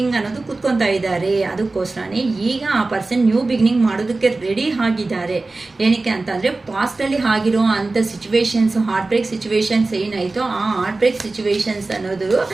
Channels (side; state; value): left; quieter; 3.3 dB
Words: ಅನ್ನೋದು ಕೂತ್ಕೊತಾ ಇದ್ದಾರೆ. ಅದಕ್ಕೋಸ್ಕರನೇ ಈಗ ಆ ಪರ್ಸನ್ ನ್ಯೂ ಬಿಗಿನಿಂಗ್ ಮಾಡೋದಕ್ಕೆ ರೆಡಿ ಆಗಿದ್ದಾರೆ. ಏನಕ್ಕೆ ಅಂತಂದರೆ ಪಾಸ್ಟಲ್ಲಿ ಆಗಿರೋ ಅಂಥ ಸಿಚುವೇಶನ್ಸ್, ಹಾರ್ಟ್ ಬ್ರೇಕ್ ಸಿಚುವೇಶನ್ಸ್ ಏನಾಯಿತೋ ಆ ಹಾರ್ಟ್ ಬ್ರೇಕ್ ಸಿಚುವೇಶನ್ಸ್ ಅನ್ನೋದು